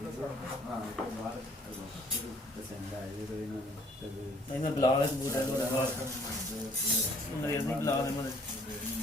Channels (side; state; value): both; normal; correlation 0.60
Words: ਇਹਨਾਂ ਬਲਾ ਵਾਲੇ ਕਬੂਤਰ ਨੂੰ ਬਾਹਰ ਨਹੀਂ ਬਲਾ ਦੇ ਮਨ